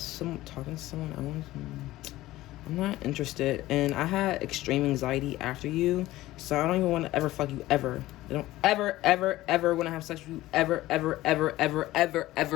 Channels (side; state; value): right; quieter; 16.6 dB